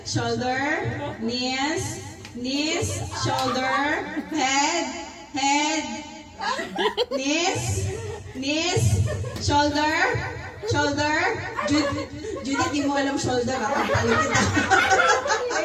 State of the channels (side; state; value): both; identical; correlation 1.00